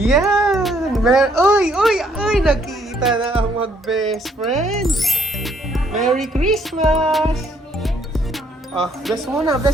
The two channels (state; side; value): normal; both; correlation 0.67